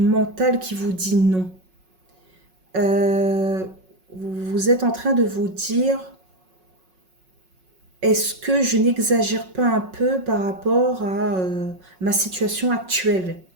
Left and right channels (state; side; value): late; left; 5.4 ms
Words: mental qui vous dit non. Vous êtes en train de vous dire, est-ce que je n'exagère pas un peu par rapport à ma situation actuelle?